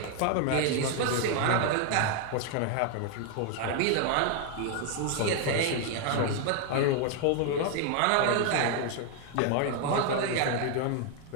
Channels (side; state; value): both; different; correlation 0.00